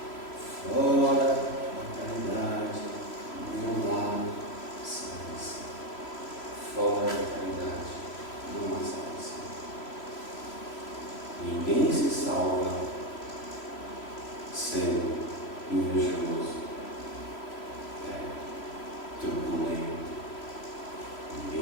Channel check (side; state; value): right; late; 3.0 ms